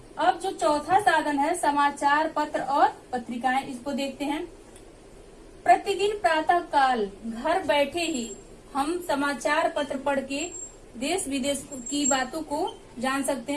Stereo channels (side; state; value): both; identical; correlation 1.00